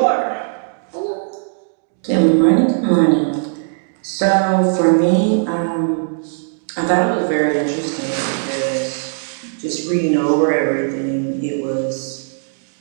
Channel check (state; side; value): silent; left; digital silence